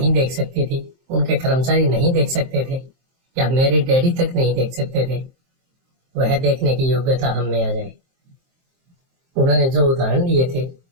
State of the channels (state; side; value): late; left; 23 ms